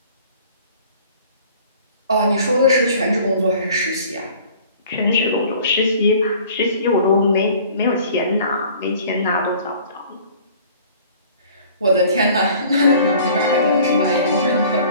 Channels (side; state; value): both; inverted; correlation -0.50